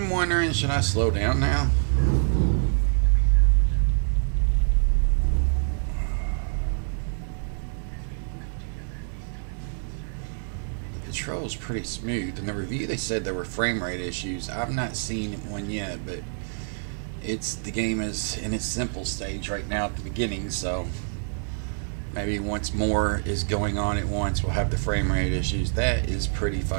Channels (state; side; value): silent; left; digital silence